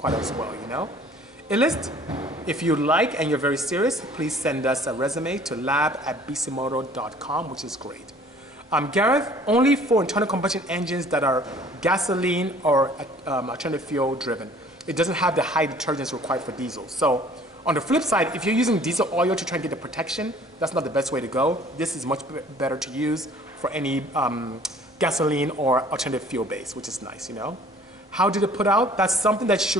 as well, you know? Illist, if you like and you're very serious, please send us a resume to lab@bisimoto.com, which is great. Gareth, only for internal combustion engines that are gasoline or alternative fuel driven. It doesn't have the high detergents required for diesel. So on the flip side, if you're using diesel oil to try and get the protection, that's not the best way to go. This is much better to use for any gasoline or alternative fuel base, which is nice, you know. How did it put out? That's something that you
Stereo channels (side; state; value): both; normal; correlation 0.53